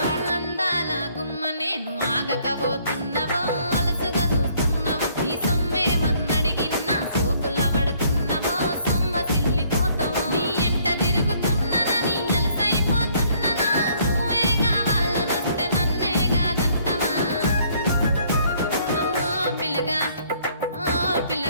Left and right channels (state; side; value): inverted; both; correlation -0.63